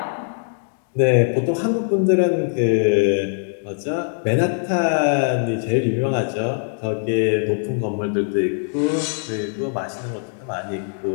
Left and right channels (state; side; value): silent; right; 65 dB below the other